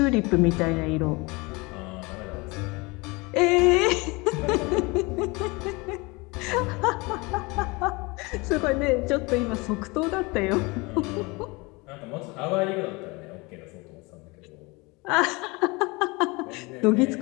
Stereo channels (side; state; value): right; quieter; 25.7 dB